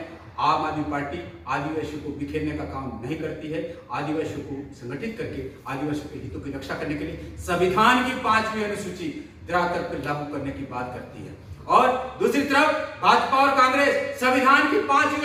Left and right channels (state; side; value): identical; both; correlation 1.00